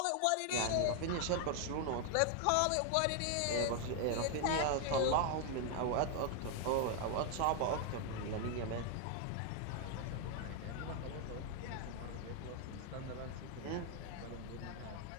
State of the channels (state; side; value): different; both; correlation 0.00